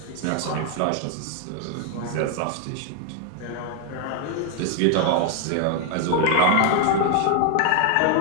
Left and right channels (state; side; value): different; both; correlation 0.01